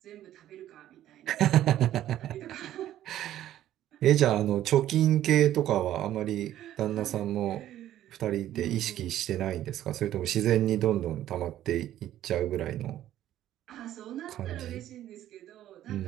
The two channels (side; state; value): left; quieter; 12.5 dB